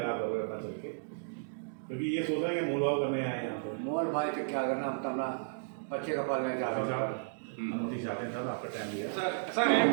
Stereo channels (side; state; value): left; silent; digital silence